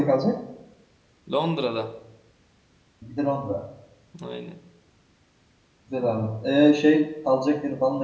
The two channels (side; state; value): both; identical; correlation 1.00